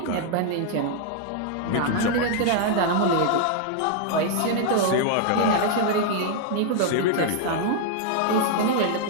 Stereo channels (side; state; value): both; different; correlation 0.00